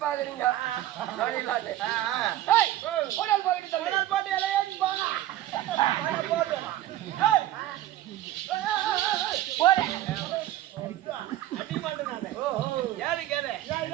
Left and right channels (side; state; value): left; quieter; 13.7 dB